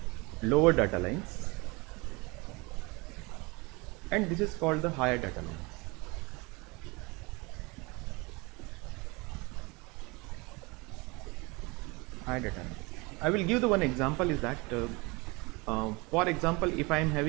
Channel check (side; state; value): left; quieter; 26.3 dB